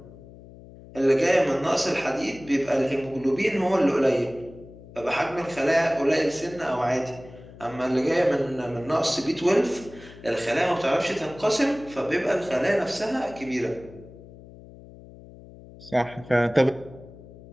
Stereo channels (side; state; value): left; noise; hum, 19 dB below the sound